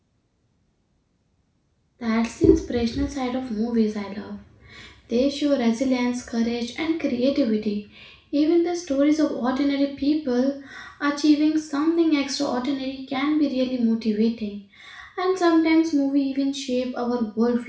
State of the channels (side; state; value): both; identical; correlation 1.00